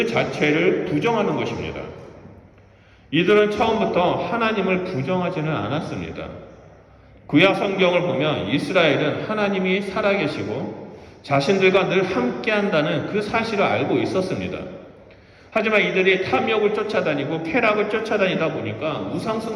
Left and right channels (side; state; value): both; identical; correlation 1.00